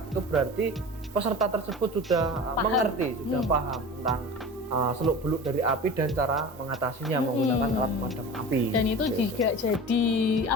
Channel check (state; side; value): normal; both; correlation 0.34